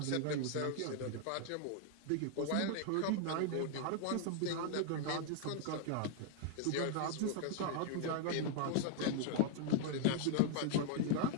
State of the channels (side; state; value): both; different; correlation 0.00